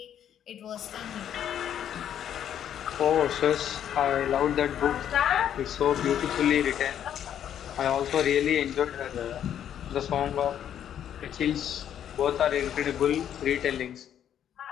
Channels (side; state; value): right; quieter; 9.9 dB